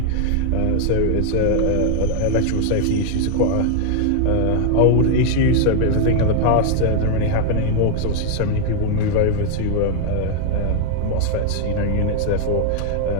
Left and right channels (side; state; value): both; different; correlation 0.00